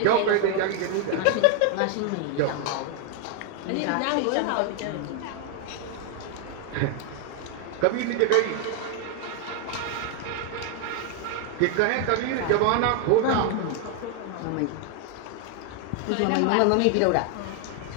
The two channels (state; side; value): different; both; correlation 0.00